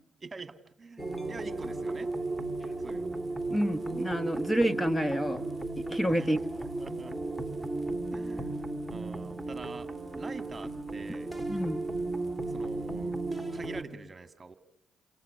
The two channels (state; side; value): normal; both; correlation 0.93